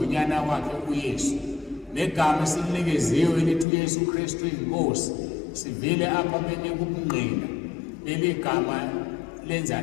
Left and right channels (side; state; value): right; drops out; at 3.7 s